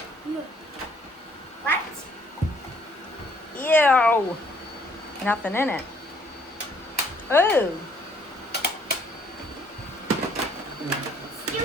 What? Ew. Nothing in it. Oh.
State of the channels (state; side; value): normal; both; correlation 0.63